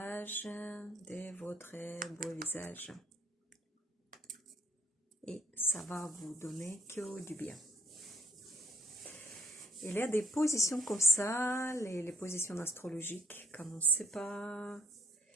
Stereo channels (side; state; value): both; normal; correlation 0.64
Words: de votre beau visage. Et ça va vous donner que du bien. Il y a des positions comme ça, les positions astrologiques, quand on ne sait pas